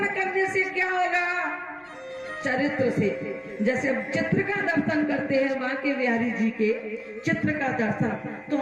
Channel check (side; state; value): both; identical; correlation 1.00